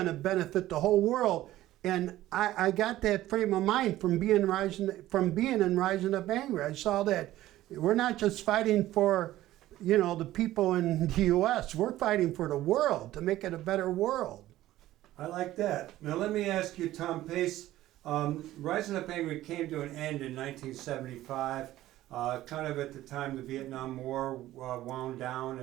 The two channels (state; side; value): quieter; left; 15.0 dB